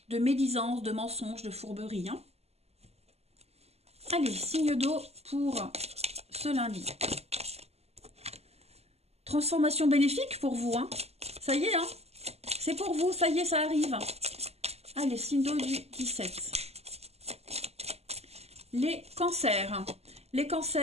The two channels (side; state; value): left; late; 0.30 ms